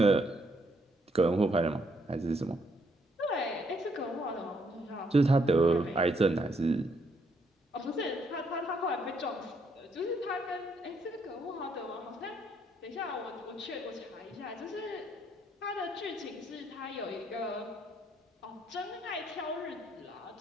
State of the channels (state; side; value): normal; both; correlation 0.72